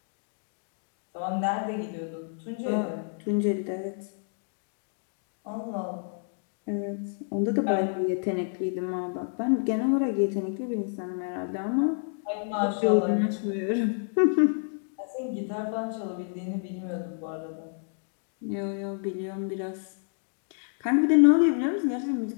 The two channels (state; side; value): silent; right; 59 dB below the other